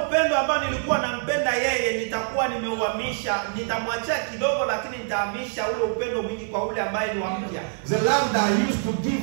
ambao nilikuwa nampenda yeye nitakuwa nimeuhamisha, nitamwachia kidogo lakini nitahamisha ule upendo mwingi kwa ule ambaye ni wa mpya. The love that I used to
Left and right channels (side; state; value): left; silent; digital silence